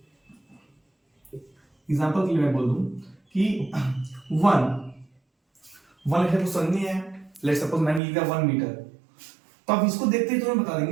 एग्जांपल के लिए मैं बोल दूं कि 1 मीटर को समझनी है। लेट्स सपोज मैंने लिखा 1 मीटर, तो आप इसको देखते ही तुम्हें बता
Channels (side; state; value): left; drops out; at 8.0 s